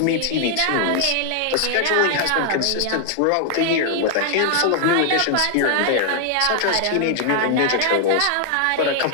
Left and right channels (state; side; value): different; both; correlation 0.00